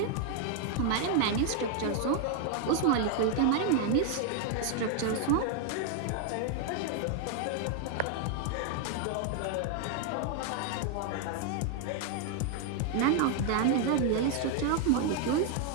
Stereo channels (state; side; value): different; both; correlation 0.00